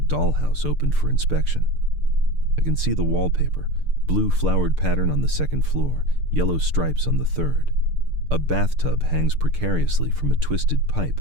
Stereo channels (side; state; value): left; late; 6.7 ms